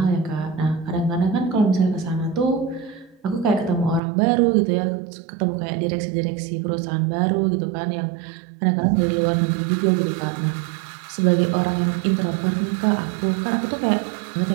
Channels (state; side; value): drops out; left; at 4.0 s